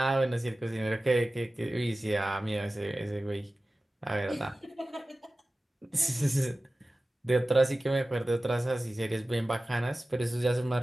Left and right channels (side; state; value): both; normal; correlation 0.96